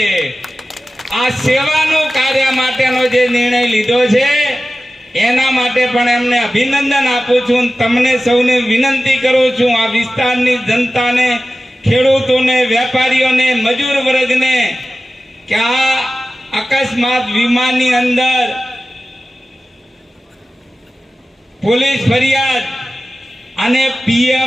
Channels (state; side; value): normal; both; correlation 0.95